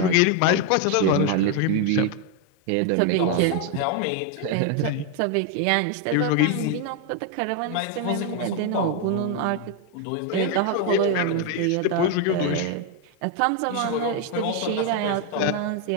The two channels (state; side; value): different; both; correlation 0.01